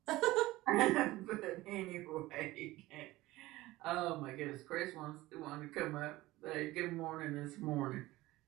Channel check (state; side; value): quieter; left; 18.2 dB